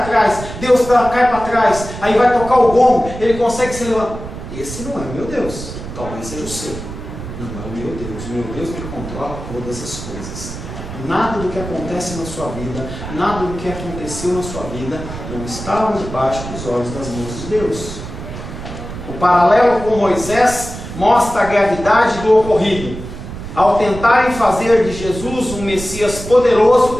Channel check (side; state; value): right; noise; rumble, 10 dB below the sound